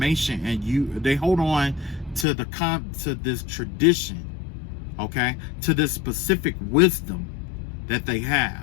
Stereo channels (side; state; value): right; drops out; at 2.2 s